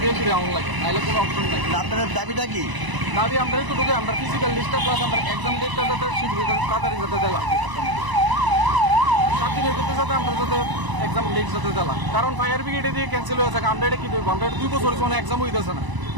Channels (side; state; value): left; late; 1.0 ms